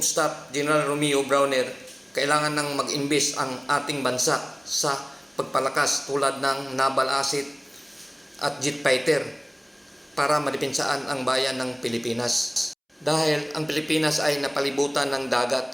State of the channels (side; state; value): both; identical; correlation 1.00